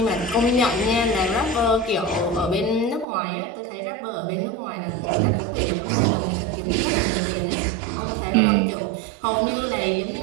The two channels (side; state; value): left; drops out; at 3.1 s